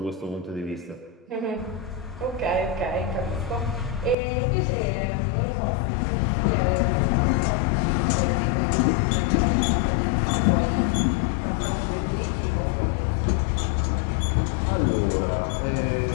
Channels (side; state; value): right; drops out; at 4.2 s